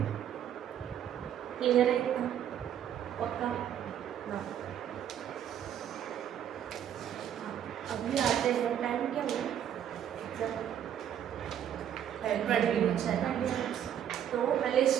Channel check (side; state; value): left; quieter; 9.9 dB